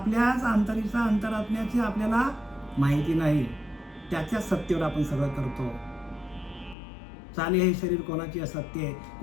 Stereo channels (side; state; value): right; drops out; at 6.8 s